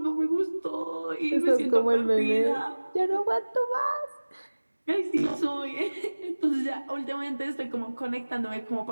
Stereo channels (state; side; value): inverted; both; correlation -1.00